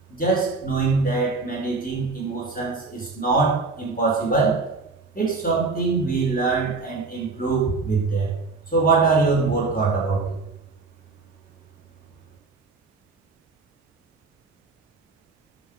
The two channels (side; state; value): left; quieter; 3.9 dB